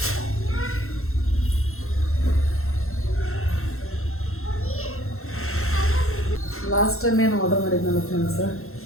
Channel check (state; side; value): late; right; 0.62 ms